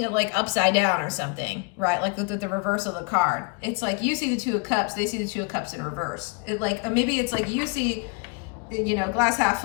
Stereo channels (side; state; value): right; quieter; 31.2 dB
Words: it like upside down or something, right? Like the reverse of the card. It's like you see the Two of Cups, they see the Two of Cups in reverse. It like, maybe it's like you see, you know, glass half